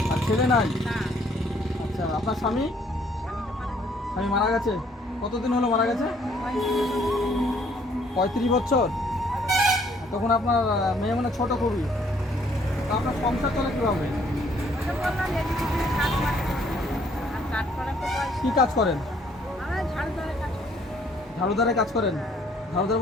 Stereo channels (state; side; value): normal; both; correlation 0.64